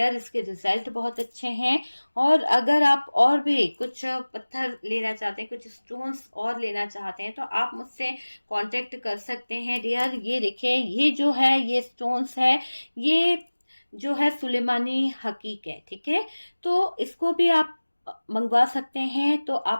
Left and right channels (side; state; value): both; inverted; correlation -1.00